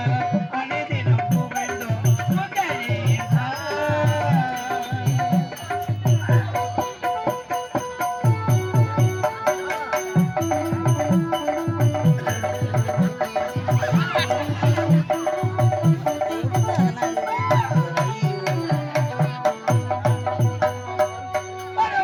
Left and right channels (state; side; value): identical; both; correlation 1.00